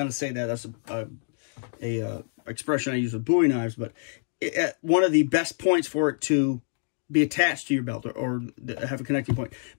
to say that. That's a expression I use with Bowie knives, but at one of the best points for it to be attached to your belt, or have a connecting point.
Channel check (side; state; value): right; silent; digital silence